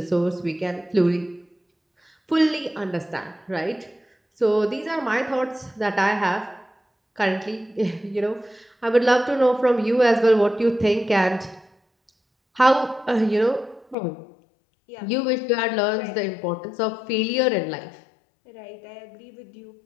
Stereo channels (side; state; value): right; drops out; at 14.0 s